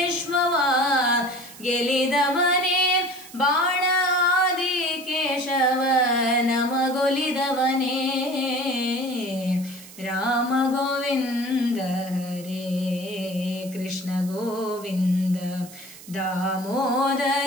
ಗೆಲಿದವನೇ ಬಾಣಾದಿ ಕೇಶವ ನಮಗೊಲಿದವನೇ ರಾಮ ಗೋವಿಂದ ಹರೇ ಕೃಷ್ಣ ಗೋವಿಂದ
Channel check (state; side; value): noise; right; hiss, 18 dB below the sound